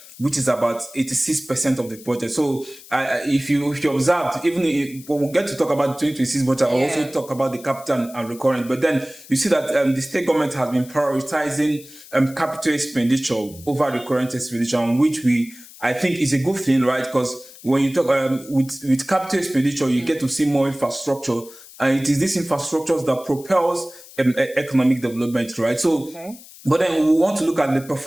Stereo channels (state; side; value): noise; left; hiss, 19 dB below the sound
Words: which is about 86% of the budget. So if you observed, even when we get to talk about the 2026 budget, I'll also talk about the capital and recurrent. But then you see that the state government has been prioritizing capital expenditure over recurrent expenditure, which I think is a good thing, right? Because when you talk with capital expenditure, you get to see more infrastructure, and it is this infrastructure that propels economic development, right? So, but then we want to look at the